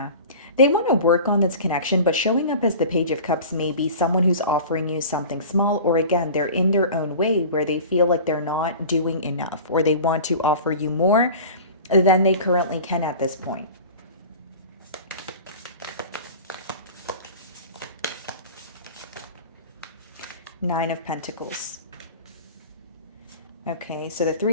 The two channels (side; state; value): both; inverted; correlation -0.38